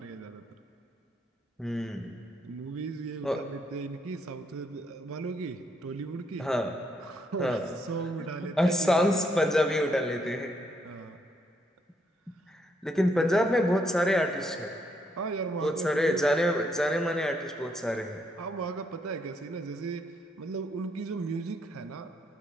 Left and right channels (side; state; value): both; normal; correlation 0.74